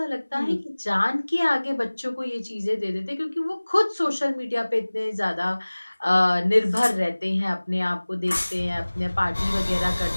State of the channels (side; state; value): both; inverted; correlation -1.00